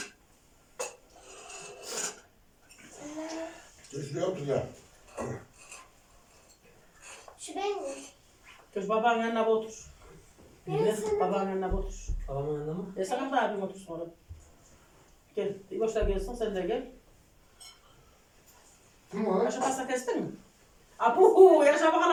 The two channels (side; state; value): both; identical; correlation 1.00